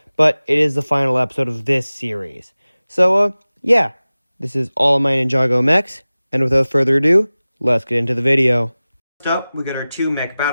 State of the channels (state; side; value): inverted; both; correlation -0.97